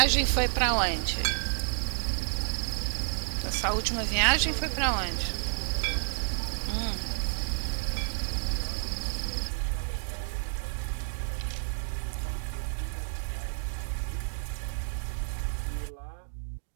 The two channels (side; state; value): left; silent; digital silence